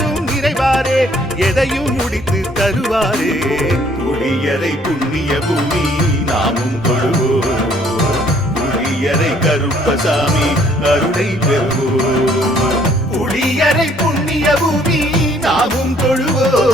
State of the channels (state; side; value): normal; both; correlation 0.62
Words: நிறைவாரே எதையும் முடித்து தருவாரே புளியரை புண்ணிய பூமி நாமும் கொள்வோம் புளியரை கருப்பசாமி அருளை பெறுவோம் புளியரை புண்ணிய பூமி நாமும்